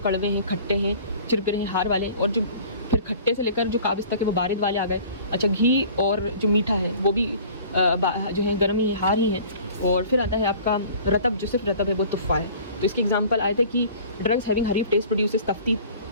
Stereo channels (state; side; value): inverted; both; correlation -0.47